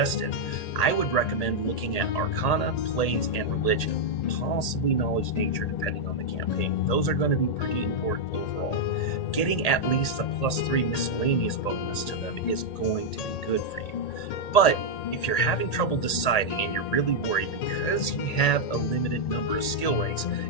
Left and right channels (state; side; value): late; right; 1.8 ms